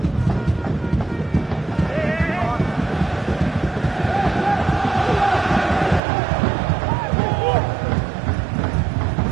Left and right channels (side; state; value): left; drops out; at 6.0 s